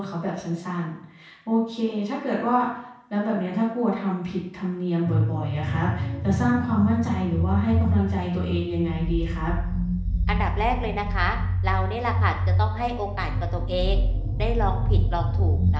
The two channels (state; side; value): identical; both; correlation 1.00